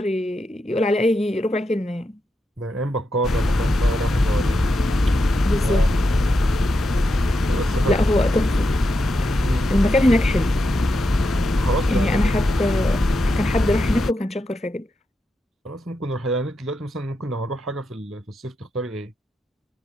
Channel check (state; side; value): normal; both; correlation 0.86